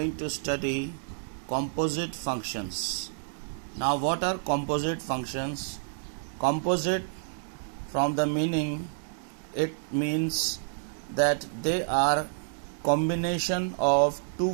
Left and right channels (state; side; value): silent; left; digital silence